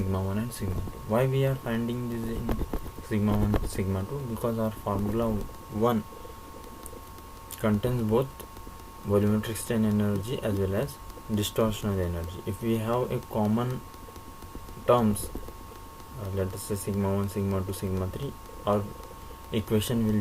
1 and sigma 2. Why we are finding this in sigma 1 sigma 2? Because our formula 1 contains both volumetric strain energy as well as distortional energy. If we have a common terms, let us say sigma 1 sigma 2 sigma 3, our equation will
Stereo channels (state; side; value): identical; both; correlation 1.00